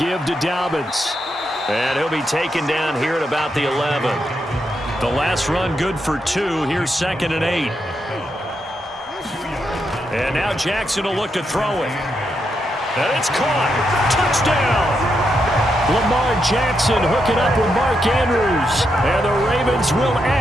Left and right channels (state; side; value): normal; both; correlation 0.82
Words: to Dobbins. And he'll be taken down here at about the 11. The last run good for 2. Here's 2nd and 8. And now Jackson will look to throw it. And it's caught. Touchdown. Lamar Jackson hooking up with Mark Andrews. And the Ravens will